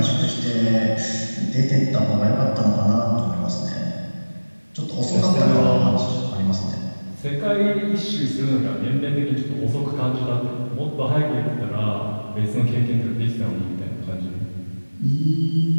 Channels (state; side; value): inverted; both; correlation -1.00